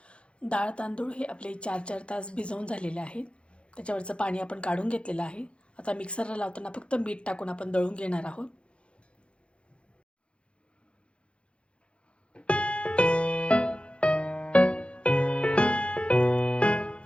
डाळ तांदूळ हे आपले 4-4 तास भिजवून झालेले आहेत. त्याच्यावरचं पाणी आपण काढून घेतलेलं आहे. आता मिक्सरला लावताना फक्त मीठ टाकून आपण दळून घेणार आहोत.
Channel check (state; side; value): late; right; 0.058 ms